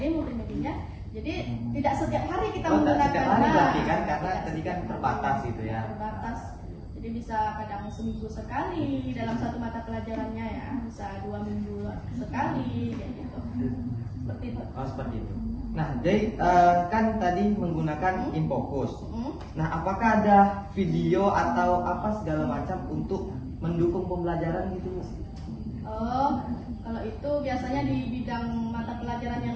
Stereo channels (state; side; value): identical; both; correlation 1.00